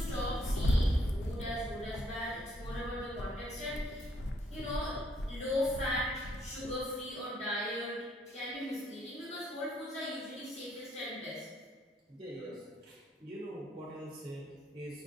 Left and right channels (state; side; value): normal; both; correlation 0.69